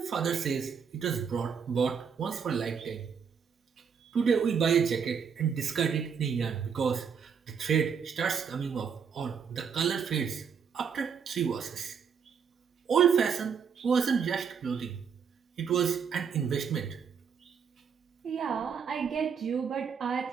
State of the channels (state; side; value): quieter; left; 6.7 dB